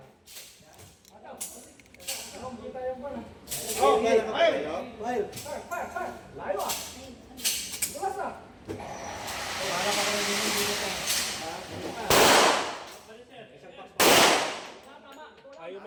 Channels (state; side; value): identical; both; correlation 1.00